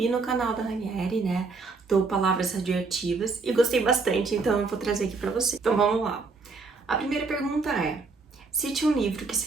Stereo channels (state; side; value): quieter; left; 4.1 dB